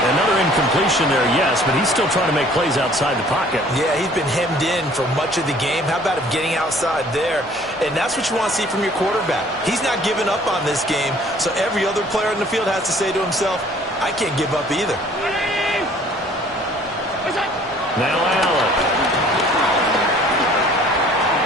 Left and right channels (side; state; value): both; normal; correlation 0.55